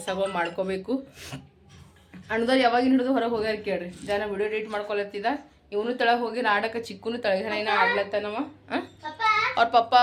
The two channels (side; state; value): both; identical; correlation 1.00